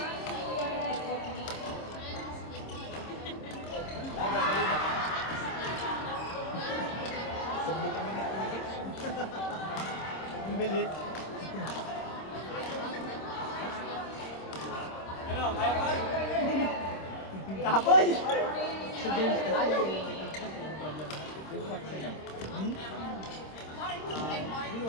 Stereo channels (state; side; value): late; right; 26 ms